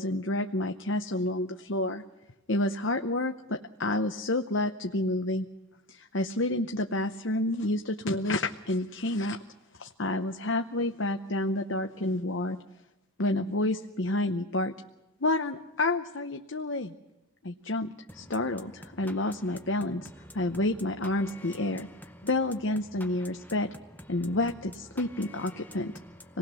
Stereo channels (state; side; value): normal; both; correlation 0.25